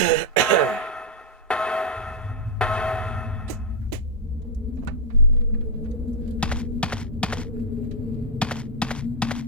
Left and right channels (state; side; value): normal; both; correlation -0.04